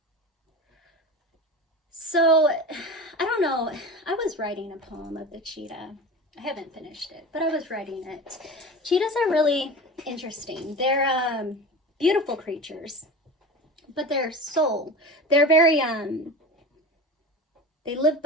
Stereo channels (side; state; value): both; normal; correlation 0.31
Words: So, I don't know, I was writing a poem of the cheetah. I haven't finished it, but I was writing it. Cheetahs are really interesting. They're beautiful creatures, but their soul, they're very they live